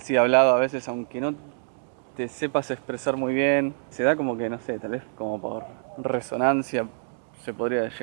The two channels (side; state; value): left; silent; 61 dB below the other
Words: hablado a veces, aunque no te sepas expresar muy bien, se da como que, no sé, tal vez como por resonancia, se podría